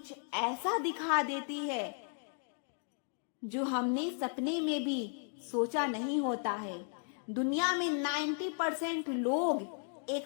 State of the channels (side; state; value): right; silent; 54 dB below the other